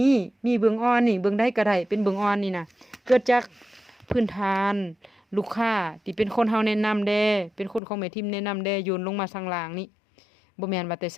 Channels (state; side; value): drops out; right; at 7.8 s